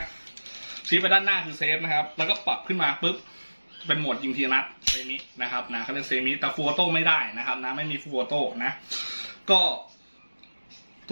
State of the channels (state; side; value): inverted; both; correlation -1.00